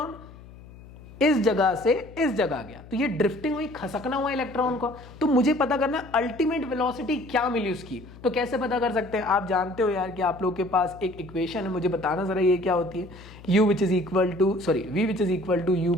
इस जगह से इस जगह गया। तो ये ड्रिफ्टिंग हुई, खसकना हुआ इलेक्ट्रॉन को। तो मुझे पता करना है अल्टीमेट वेलोसिटी क्या मिली उसकी। तो कैसे पता कर सकते हैं? आप जानते हो यार कि आप लोग के पास एक इक्वेशन है, मुझे बताना जरा ये क्या होती है। v which is equal to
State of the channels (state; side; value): noise; left; hum, 19 dB below the sound